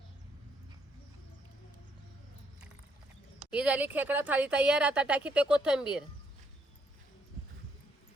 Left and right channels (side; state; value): both; normal; correlation 0.71